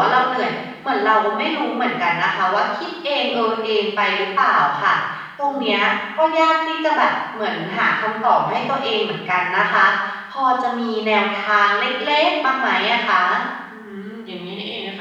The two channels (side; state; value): both; identical; correlation 1.00